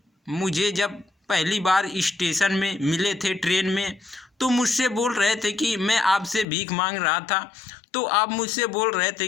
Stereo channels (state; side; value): drops out; right; at 6.5 s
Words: मुझे जब पहली बार स्टेशन में मिले थे ट्रेन में, तो मुझसे बोल रहे थे कि मैं आपसे भीख मांग रहा था, तो आप मुझसे बोल रहे थे